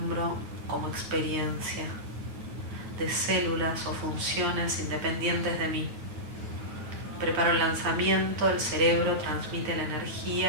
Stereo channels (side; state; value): left; late; 9.4 ms